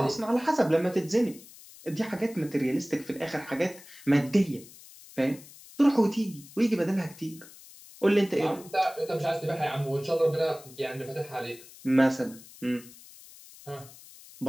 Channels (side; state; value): left; noise; hiss, 20 dB below the sound